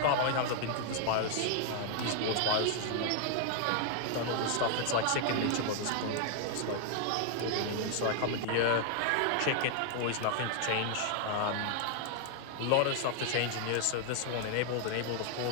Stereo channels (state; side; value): different; both; correlation 0.00